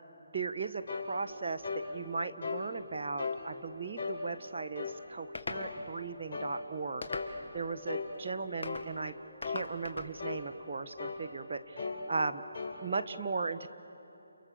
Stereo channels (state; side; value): inverted; both; correlation -0.77